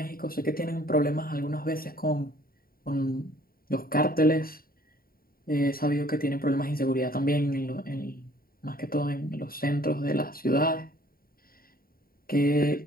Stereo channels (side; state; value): right; late; 0.43 ms